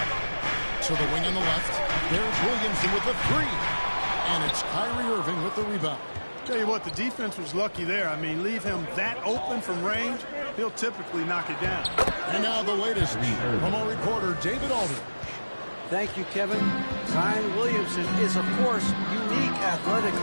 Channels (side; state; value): both; inverted; correlation -1.00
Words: To the wing on the left. There's Williamson with the three. And it's Kyrie Irving with the rebound. Tell you what, the defense was lucky there. I mean, leave him that open from range, he'll typically knock it down. And now the latest from our reporter, David Aldridge. Thank you, Kevin. Zion Williamson is, of course, unique